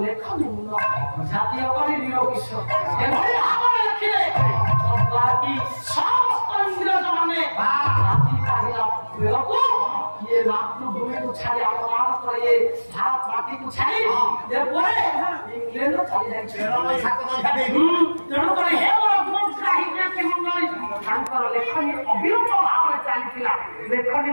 ଲେଖନୀ ଜାତୀୟ କରି ନିରୋଗୀଶ ଏଭଳି ଭାବରେ ଲେଖିଲେ ବାକି ସମସ୍ତ ଇଂରେଜ ମାନେ ଜାତି ପାହିଲା ବେଳକୁ ଇଏ ମାତୃଭୂମିକୁ ଛାଡ଼ି ଆପଣମାନଙ୍କର ଇଏ ଭାରତ ମାଟିକୁ ଛାଡ଼ି ଏପରେ ଇଂଲେଣ୍ଡ ଛାଡ଼ି ଯାଇଛି ତେଣୁକରି ହେ ମୋର ମଣ୍ଡଳୀ ତାଙ୍କର ଲେଖନୀ ଅବିରତ ଭାବରେ ଚାଲିଥିଲା ଲେଖନୀ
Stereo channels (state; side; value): inverted; both; correlation -1.00